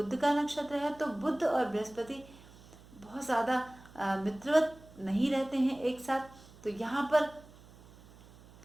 का नक्षत्र है, तो बुध और बृहस्पति बहुत ज्यादा मित्रवत नहीं रहते हैं एक साथ, तो यहाँ पर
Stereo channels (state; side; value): noise; right; hum, 22 dB below the sound